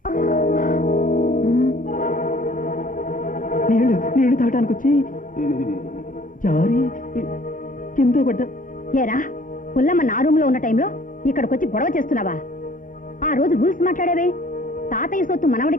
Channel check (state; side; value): normal; both; correlation 0.55